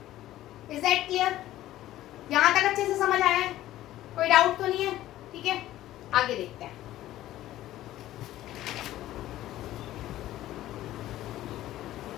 Is that clear? यहां तक अच्छे से समझ आया है, कोई डाउट तो नहीं है, ठीक है। आगे देखते हैं।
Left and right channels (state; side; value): quieter; right; 14.3 dB